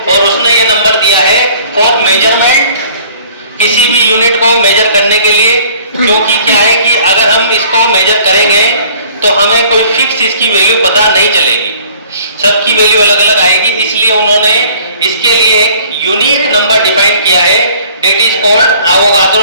और उसने ये नंबर दिया है फॉर मेजरमेंट, किसी भी यूनिट को मेजर करने के लिए। क्योंकि क्या है कि अगर हम इसको मेजर करेंगे तो हमें कोई फिक्स इसकी वैल्यू पता नहीं चलेगी, सबकी वैल्यू अलग अलग आएगी। इसलिए उन्होंने इसके लिए एक यूनिक नंबर डिफाइन किया है, that is called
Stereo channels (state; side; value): inverted; both; correlation -0.54